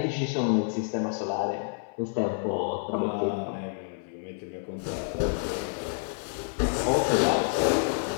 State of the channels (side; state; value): right; silent; 58 dB below the other